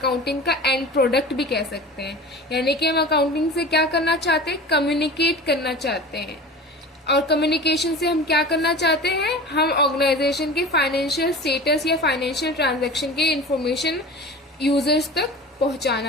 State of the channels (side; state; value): both; normal; correlation 0.36